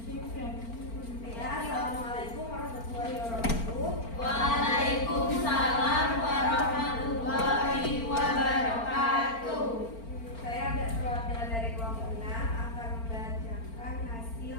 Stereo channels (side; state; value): right; late; 4.4 ms